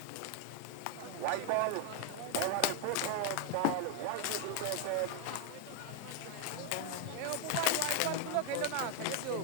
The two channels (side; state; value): both; different; correlation 0.01